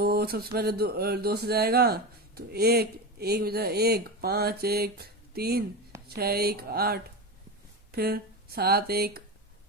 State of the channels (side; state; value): both; normal; correlation 0.21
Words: सबसे पहले दो से जाएगा, तो एक एक बजा, 1 5 1 3 6 1 8, फिर 7 1